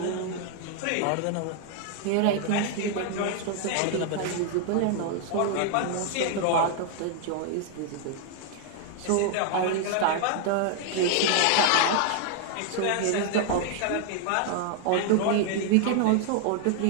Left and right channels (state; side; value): different; both; correlation 0.00